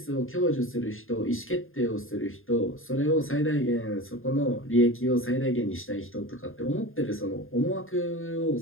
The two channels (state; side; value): late; right; 0.59 ms